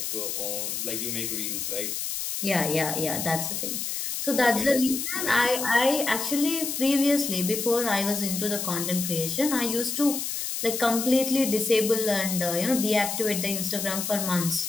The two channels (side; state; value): left; noise; hiss, 3 dB below the sound